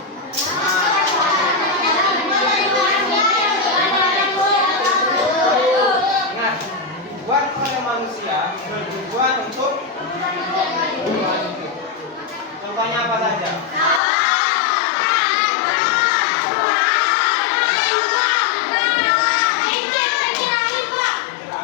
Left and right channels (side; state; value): right; drops out; at 14.0 s